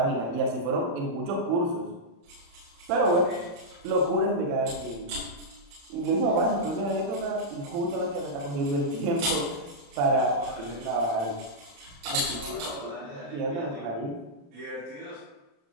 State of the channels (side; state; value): left; late; 35 ms